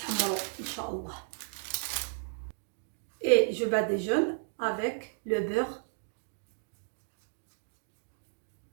ان شاء الله. Et je badigeonne avec le beurre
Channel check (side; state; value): left; silent; digital silence